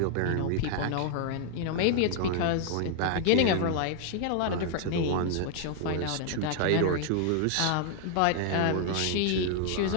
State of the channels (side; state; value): both; different; correlation 0.00